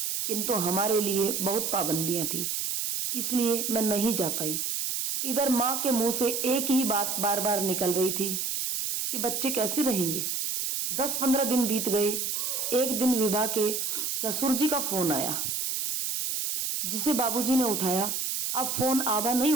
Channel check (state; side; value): noise; right; hiss, 1 dB below the sound